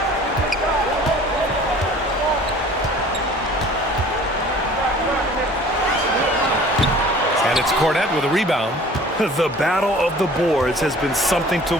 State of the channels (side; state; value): both; normal; correlation 0.48